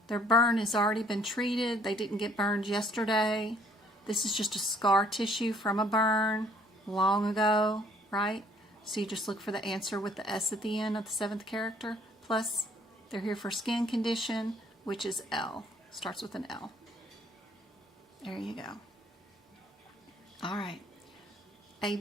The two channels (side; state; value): both; normal; correlation 0.61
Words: their burn has already been treated. They didn't get burned yesterday. This is just a scar tissue from a burn long ago, right? So you just look for the answer with the S at the end of the 7th character. Plus, they're here for skin condition, which is L. Starts with an L. There you go. All right. A